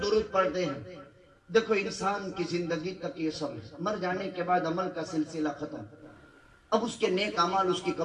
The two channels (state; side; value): identical; both; correlation 1.00